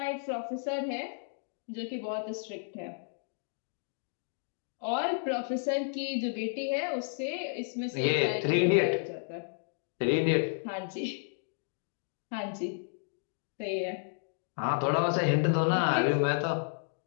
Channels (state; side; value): silent; right; digital silence